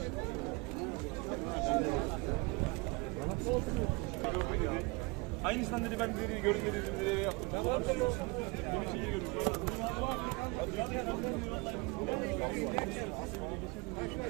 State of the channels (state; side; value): quieter; left; 27.2 dB